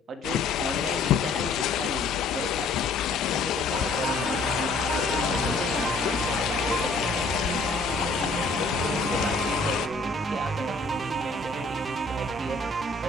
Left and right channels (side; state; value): right; quieter; 3.5 dB